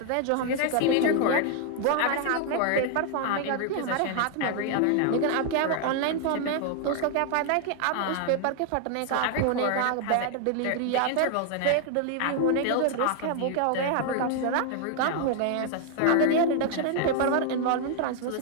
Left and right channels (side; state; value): both; different; correlation 0.00